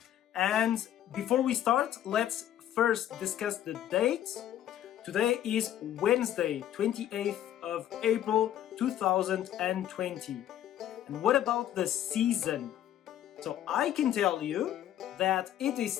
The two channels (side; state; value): right; quieter; 11.6 dB